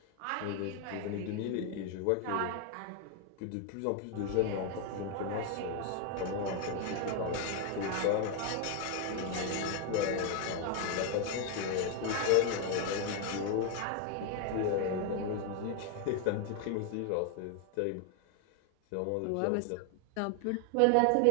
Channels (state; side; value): different; both; correlation 0.01